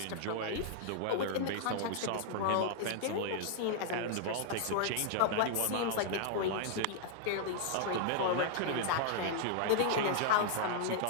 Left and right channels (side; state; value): both; different; correlation -0.01